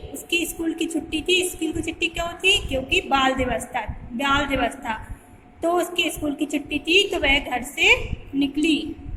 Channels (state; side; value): identical; both; correlation 1.00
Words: उसकी स्कूल की छुट्टी थी। स्कूल की छुट्टी क्यों थी? क्योंकि बाल दिवस था, बाल दिवस था। तो उसकी स्कूल की छुट्टी थी तो वह घर से निकली।